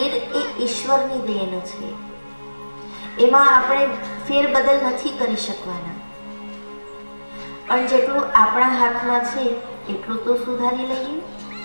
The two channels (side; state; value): both; inverted; correlation -1.00